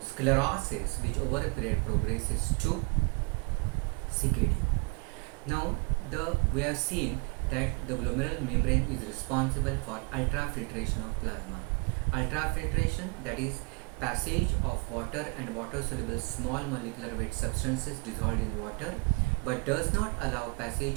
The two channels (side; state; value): left; quieter; 31.7 dB